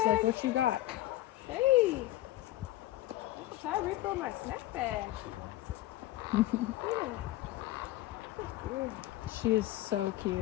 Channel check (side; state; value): right; quieter; 15.7 dB